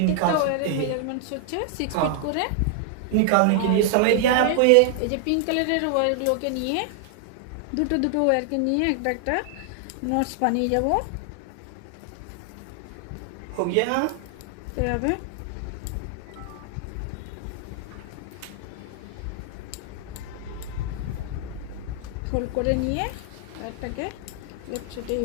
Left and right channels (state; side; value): different; both; correlation 0.00